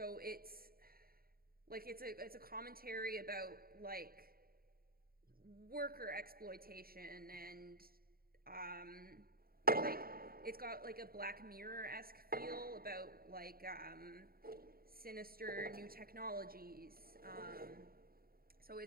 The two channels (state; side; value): late; left; 0.43 ms